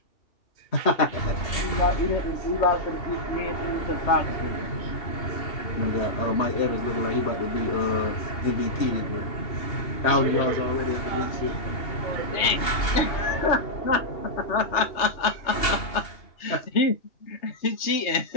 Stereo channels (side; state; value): right; late; 2.8 ms